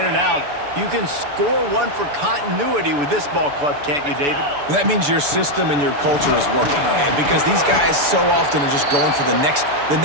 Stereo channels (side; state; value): left; late; 6.9 ms